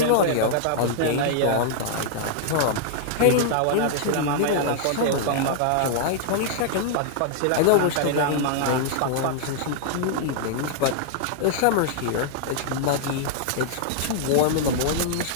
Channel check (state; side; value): different; both; correlation -0.01